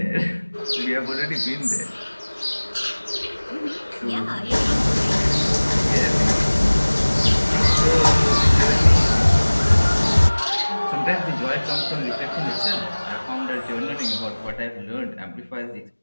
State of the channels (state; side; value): inverted; both; correlation -1.00